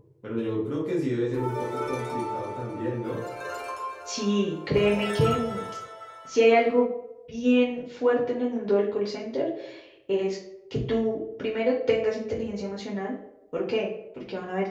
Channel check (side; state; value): both; identical; correlation 1.00